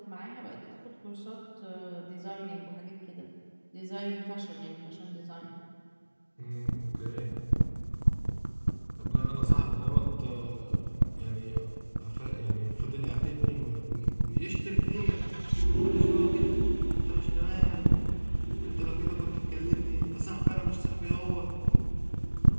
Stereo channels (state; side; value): inverted; both; correlation -1.00